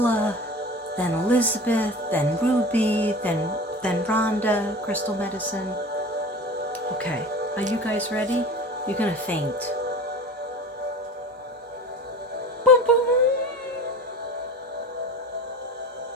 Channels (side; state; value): both; normal; correlation 0.37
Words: then Elizabeth, then Ruby, then Rhonda, Crystal Medicine. Okay, are you guys ready? You're gonna faint. Boom, boom.